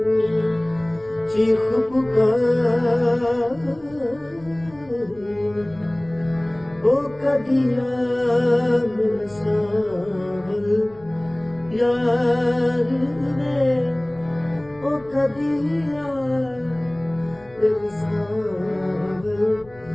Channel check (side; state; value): left; noise; rumble, 26 dB below the sound